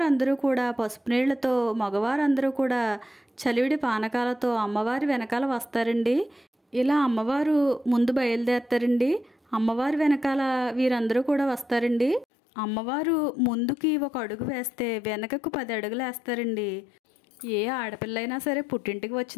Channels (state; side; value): drops out; right; at 12.2 s